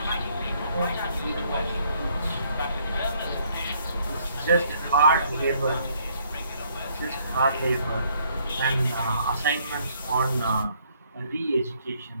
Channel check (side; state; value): both; inverted; correlation -0.67